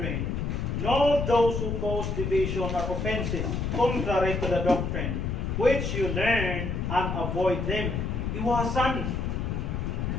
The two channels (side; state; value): left; noise; rumble, 1 dB below the sound